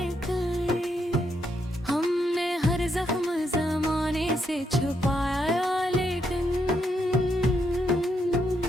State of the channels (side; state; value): both; normal; correlation 0.78